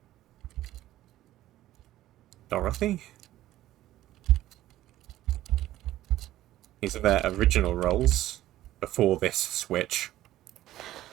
Dorothy? These are their original roles before this switch.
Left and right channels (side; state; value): left; quieter; 14.5 dB